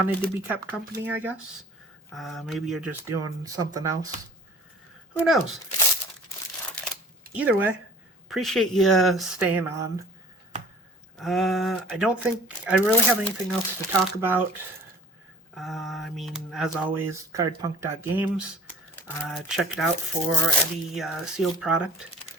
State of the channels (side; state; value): both; normal; correlation 0.45